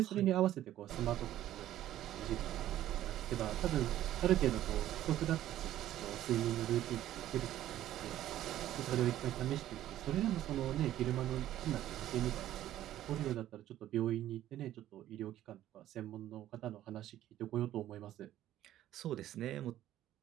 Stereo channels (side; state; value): left; quieter; 13.0 dB